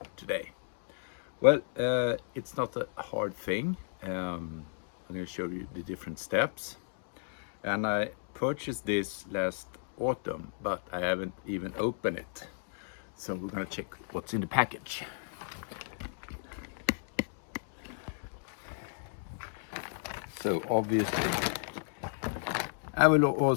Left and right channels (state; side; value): silent; right; digital silence